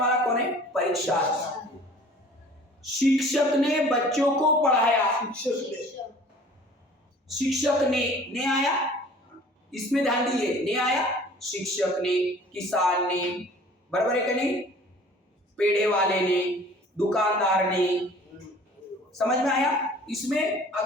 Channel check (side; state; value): both; normal; correlation 0.49